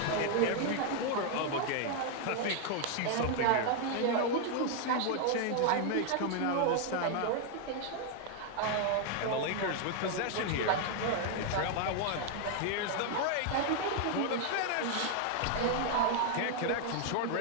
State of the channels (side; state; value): both; different; correlation 0.00